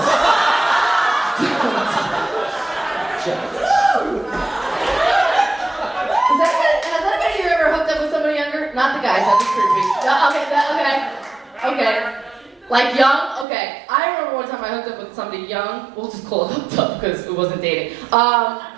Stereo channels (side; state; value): left; drops out; at 13.5 s